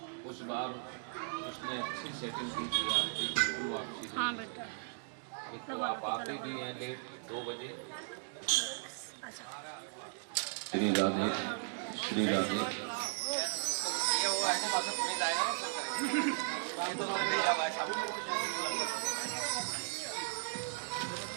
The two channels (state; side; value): silent; left; digital silence